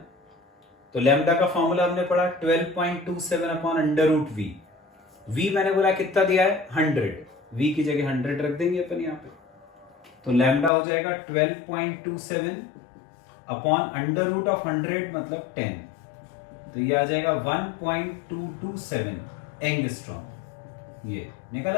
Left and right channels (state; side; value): drops out; right; at 10.7 s